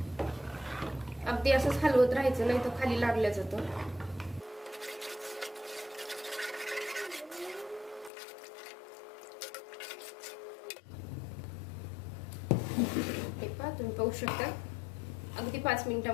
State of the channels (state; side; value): drops out; right; at 8.1 s